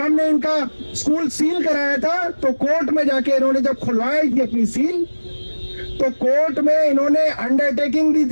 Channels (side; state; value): both; inverted; correlation -1.00